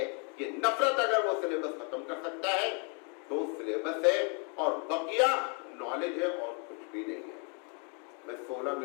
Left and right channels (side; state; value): right; quieter; 37.7 dB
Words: کہ نفرت اگر وہ سلیبس ختم کر سکتا ہے تو سلیبس ہے، اور بقیہ نالج ہے اور کچھ بھی نہیں ہے. میں 16